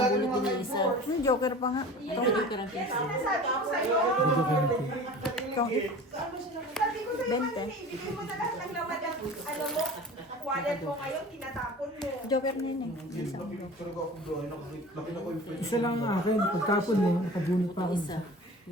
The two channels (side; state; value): both; normal; correlation 0.39